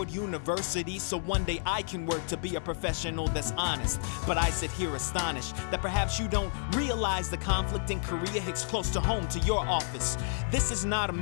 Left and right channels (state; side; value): silent; right; digital silence